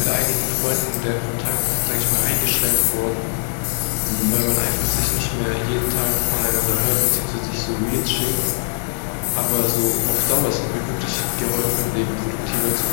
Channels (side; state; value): right; silent; digital silence